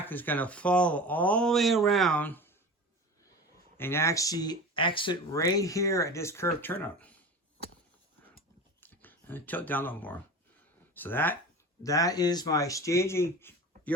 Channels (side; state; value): both; normal; correlation 0.33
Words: is going to follow all the way around and actually exit right here at this curved turnout. And tilt down a little more. So that is my staging